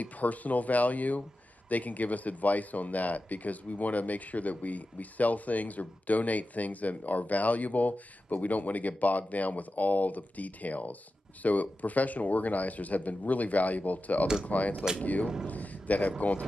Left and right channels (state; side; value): normal; both; correlation 0.93